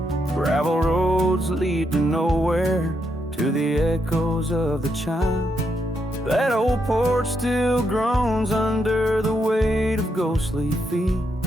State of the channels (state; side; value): normal; both; correlation 0.80